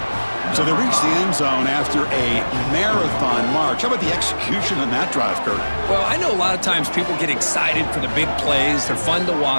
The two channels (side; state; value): both; inverted; correlation -1.00